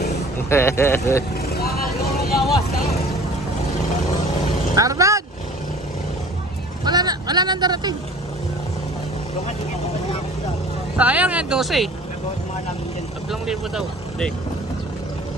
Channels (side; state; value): both; normal; correlation 0.46